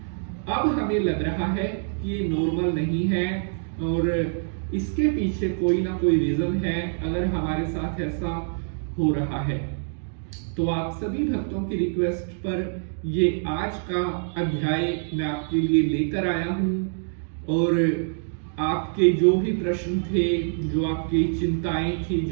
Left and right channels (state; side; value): silent; left; digital silence